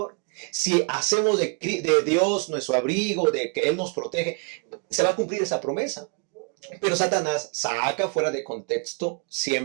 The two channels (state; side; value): quieter; left; 35.1 dB